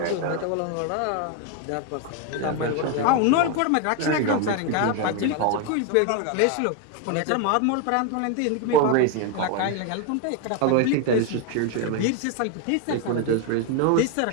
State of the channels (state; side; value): different; both; correlation 0.01